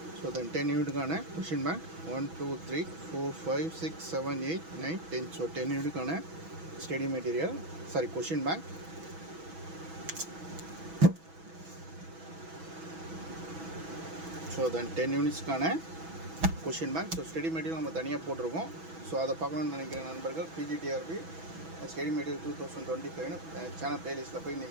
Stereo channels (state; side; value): late; left; 6.1 ms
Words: ஸோ தென் 10 யூனிட்டுக்கான கொஷின் பேங்க் 1 2 3 4 5 6 7 8 9 10. ஸோ 10 யூனிட்டுக்கான study material question bank. So then 10 யூனிட்ஸ்க்கான question bank. So study material நம்ம தனியாக போட்டிருக்கோம். ஸோ அதை பார்க்கணுன்னு நினைக்கிற நண்பர்கள் பிஜிடிஆர்பி ஸ்டடி மெட்டீரியல் 2025 சேனல் ப்ளேலிஸ்ட்டில் போய்